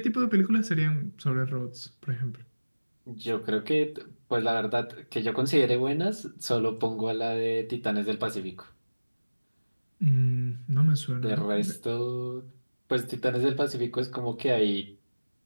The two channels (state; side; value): inverted; both; correlation -1.00